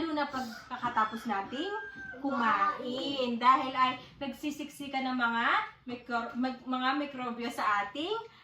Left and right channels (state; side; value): identical; both; correlation 1.00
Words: na pagkakatapos nating kumain. Dahil ay nagsisiksikan ng mga mikrobyo sa ating